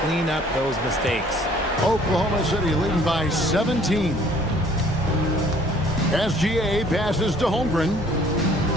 clean up those mistakes. Oklahoma City leading by 17. SGA passes to Holmgren.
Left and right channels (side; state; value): both; normal; correlation 0.57